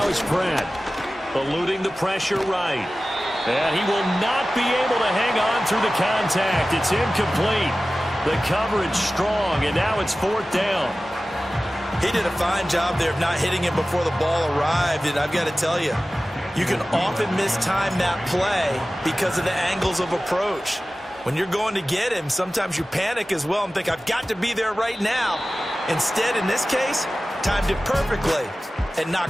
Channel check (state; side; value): normal; both; correlation 0.96